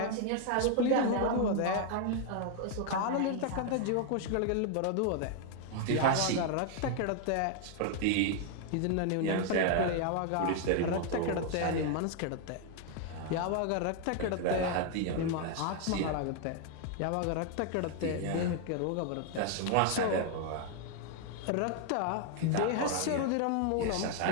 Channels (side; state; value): both; different; correlation 0.00